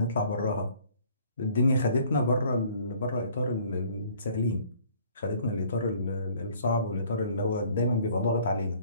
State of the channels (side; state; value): both; inverted; correlation -0.57